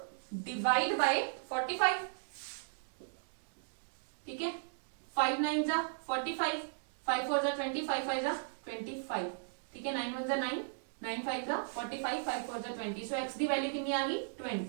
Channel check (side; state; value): left; silent; digital silence